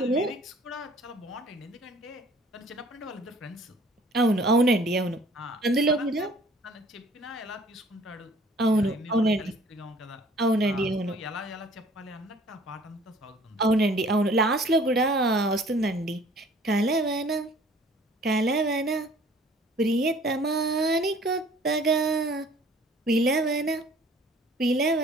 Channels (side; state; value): both; normal; correlation 0.54